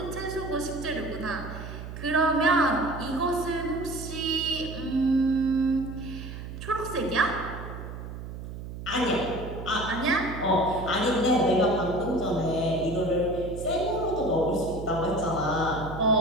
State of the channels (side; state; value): right; noise; hum, 10 dB below the sound